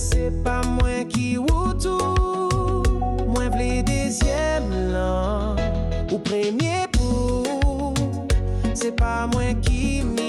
pas moi qui ou tout. Moi v'le deuxième là, ou premier pour. C'est pas moi qui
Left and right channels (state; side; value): identical; both; correlation 1.00